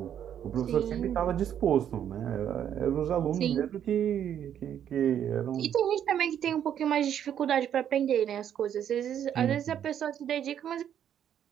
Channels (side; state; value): left; quieter; 9.6 dB